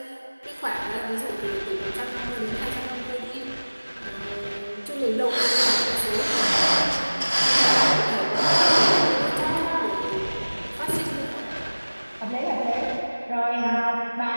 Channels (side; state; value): both; inverted; correlation -1.00